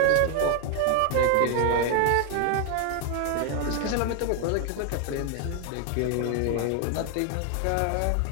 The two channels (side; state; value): both; different; correlation 0.00